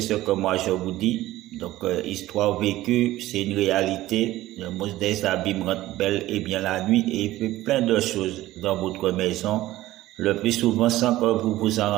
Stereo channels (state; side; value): quieter; left; 16.0 dB